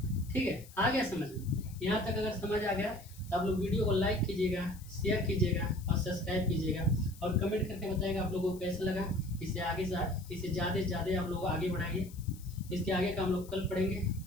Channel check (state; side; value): noise; left; hiss, 21 dB below the sound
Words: ठीक है। आ गया समझ में? यहाँ तक अगर समझ आ गया तो आप लोग वीडियो को लाइक कीजिएगा, शेयर कीजिएगा और सब्सक्राइब कीजिएगा और कमेंट करके बताइएगा आप लोगों को कैसा लगा। इसे आगे इसे ज़्यादा से ज़्यादा आप लोग आगे बढ़ाइए। इसके आगे का हम लोग कल पढ़ेंगे,